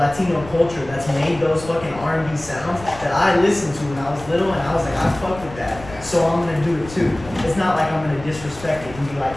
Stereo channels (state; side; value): noise; left; rumble, 16 dB below the sound